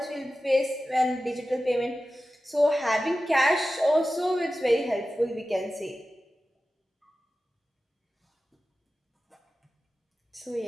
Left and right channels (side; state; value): both; normal; correlation 0.94